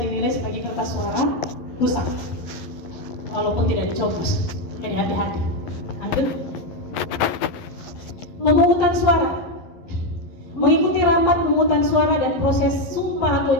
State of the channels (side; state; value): right; late; 11 ms